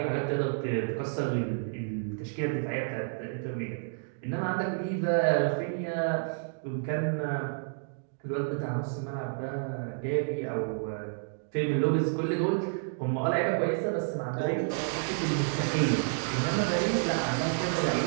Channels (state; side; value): silent; left; digital silence